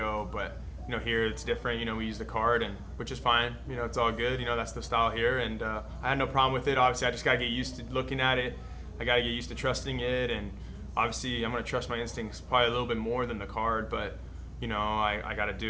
But, here it's different. We use the card, and which is fine. It's all good. That's the style here, and I had no problem with it. Obviously, I just got to get used to looking at it. I got to get used to trusting it, and obviously, I'm going to trust my instincts probably a little bit more than the card, but, I got to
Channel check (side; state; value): both; identical; correlation 1.00